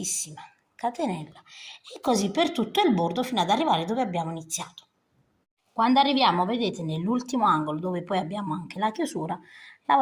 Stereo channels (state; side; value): identical; both; correlation 1.00